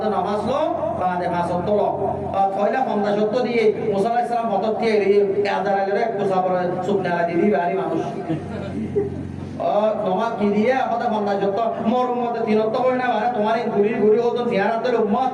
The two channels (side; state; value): both; identical; correlation 1.00